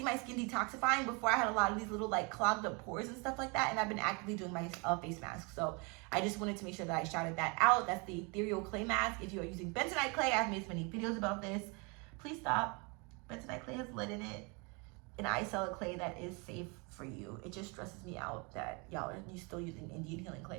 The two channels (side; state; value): left; quieter; 30.9 dB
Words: my skin detoxifying. Before, I had a lot of these little like clogged up pores and stuff like that, and I've been actively doing my face mask. So I just wanted to make sure that I shouted that out. That's the ethereal clay mask. If you are using bentonite clay, I've made so many videos about this. Please stop. Bentonite clay has lead in it, and I sell a clay that is safe for you. It just stresses me out that y'all are still using Indian healing